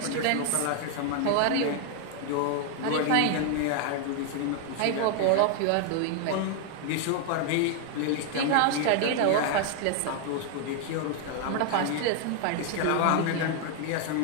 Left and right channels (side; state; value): both; different; correlation 0.00